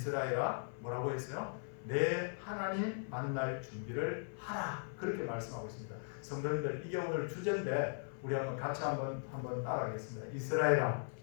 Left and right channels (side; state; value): right; silent; 52 dB below the other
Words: 뭐라고 했어요? 내 하나님 만날 준비를 하라. 그렇게 말씀하고 있습니다. 성도님들, 이게 오늘 주제인데 우리 한번 같이 한번 따라하겠습니다. 이스라엘아,